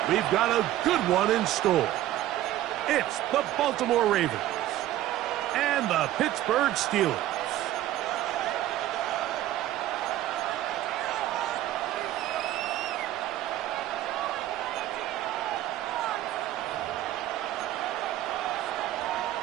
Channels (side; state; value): left; quieter; 13.9 dB